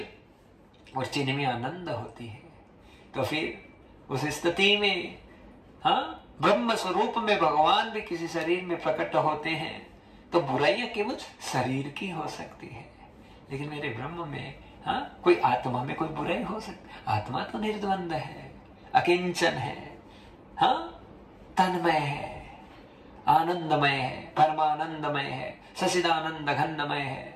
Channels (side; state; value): both; identical; correlation 1.00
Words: और चिन्ह में आनंद होती है। तो फिर उस स्थिति में, हाँ, ब्रह्म स्वरूप में भगवान भी किसी शरीर में प्रकट होते हैं तो बुराइयां केवल शरीर की हो सकती है, लेकिन मेरे ब्रह्म में, हाँ, कोई आत्मा में कोई बुराई हो सकती। आत्मा तो निर्द्वंद है, अकिंचन है, हाँ, तन्मय है, आनंदमय है, परमानंदमय है, सचिदानंद घनमय